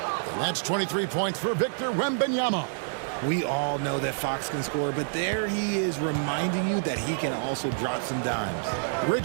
That's 23 points for Victor Wembanyama. We all know that Fox can score, but there he is reminding you that he can also drop some dimes.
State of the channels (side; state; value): left; silent; digital silence